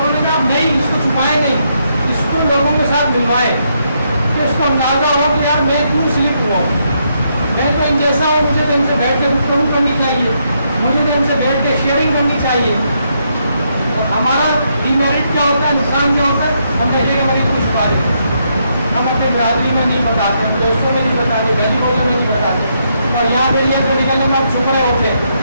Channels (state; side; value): inverted; both; correlation -0.77